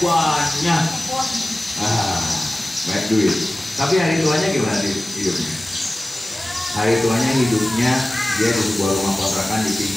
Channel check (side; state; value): both; normal; correlation 0.97